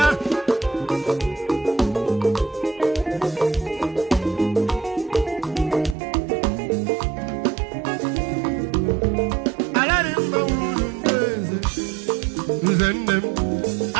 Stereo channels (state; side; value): drops out; left; at 6.0 s